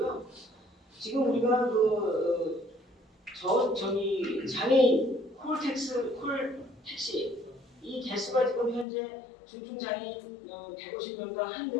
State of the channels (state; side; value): drops out; right; at 8.8 s